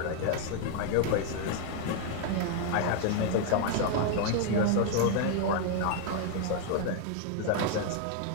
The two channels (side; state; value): both; different; correlation 0.00